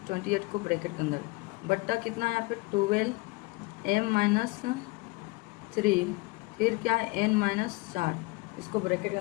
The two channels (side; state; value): right; quieter; 24.1 dB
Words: 28 को ब्रैकेट के अंदर, बट्टा कितना है यहाँ पे 12m माइनस 3, फिर क्या है n माइनस 4, इसको ब्रैकेट के